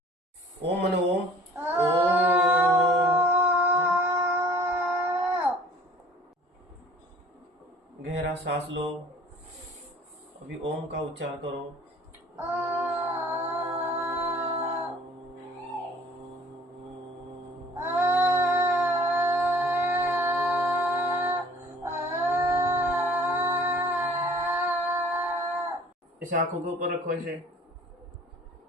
ओम म्हणे ओम. गहरा सांस लो. अभी ओम का उच्चारण करो. ऐसे आंखों के ऊपर रखो. ऐसे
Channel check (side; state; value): both; normal; correlation 0.51